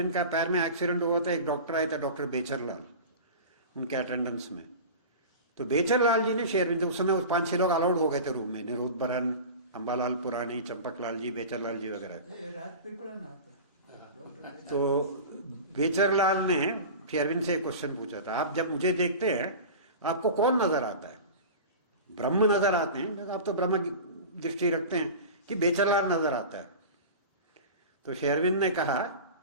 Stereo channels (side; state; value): both; inverted; correlation -0.33